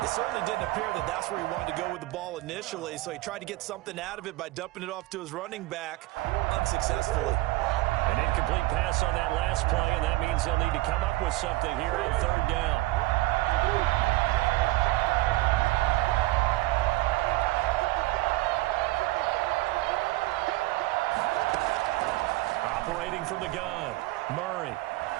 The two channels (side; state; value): left; quieter; 19.2 dB